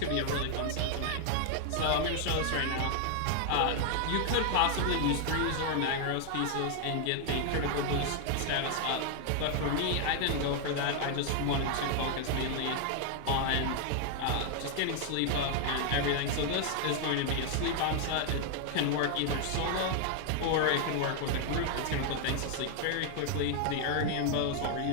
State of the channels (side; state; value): both; different; correlation 0.00